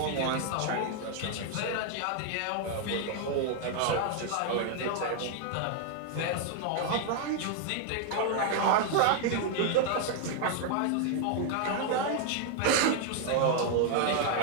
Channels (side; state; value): both; different; correlation 0.00